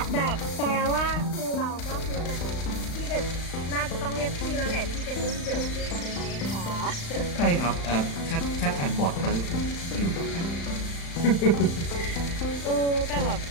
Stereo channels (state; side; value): late; right; 35 ms